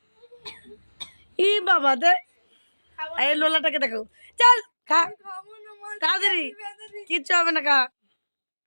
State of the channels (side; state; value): both; inverted; correlation -1.00